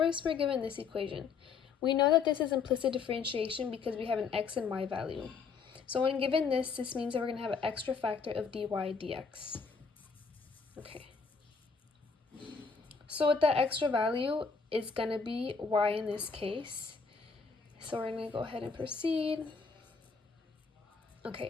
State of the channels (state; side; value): quieter; right; 5.3 dB